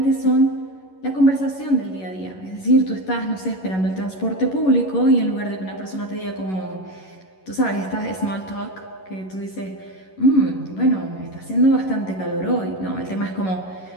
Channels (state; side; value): late; right; 11 ms